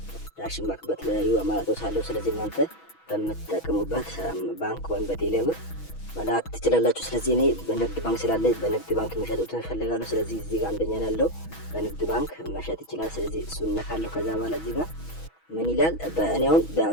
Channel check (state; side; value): late; right; 6.2 ms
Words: ባንክ በተለያዩ አማራጮች አለው። ስለዚህ እናንተ በምትጠቀሙበት ባንክ ወይም በቴሌብር መላክ ትችላላችሁ። ስለዚህ እኔ በንግድ ባንክ ስላለ በንግድ ባንክ የሚሸጡትን እፈልጋለሁ። ስለዚህ እዚህ ጋር አንደኛ ያለው በንግድ ባንክ መሸጥ ይችላል። ስለዚህ እሱን እነካለሁ። ከዛ በኋላ እዚህ ጋር ምን ይላል? እኔ አሁን